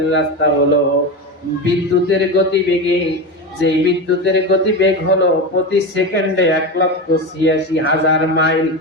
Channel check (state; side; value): normal; both; correlation 0.20